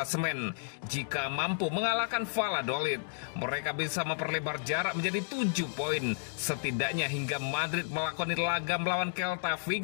Jika mampu mengalahkan Valladolid, mereka bisa memperlebar jarak menjadi 7 poin, setidaknya hingga Madrid melakoni laga melawan Celta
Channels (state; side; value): silent; right; digital silence